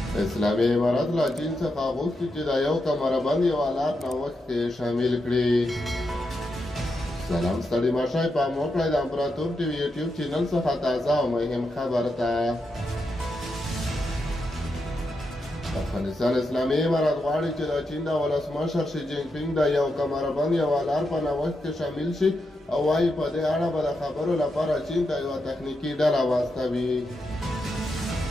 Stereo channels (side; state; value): both; normal; correlation 0.85